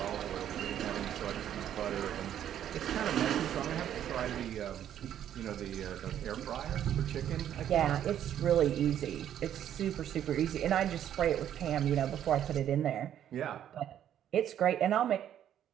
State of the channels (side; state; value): left; quieter; 10.5 dB